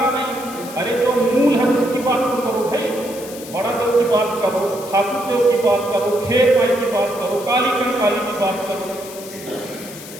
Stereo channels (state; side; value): noise; left; hiss, 15 dB below the sound